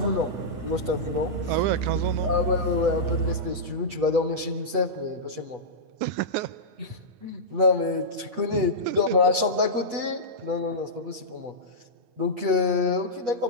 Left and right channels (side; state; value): left; late; 8.2 ms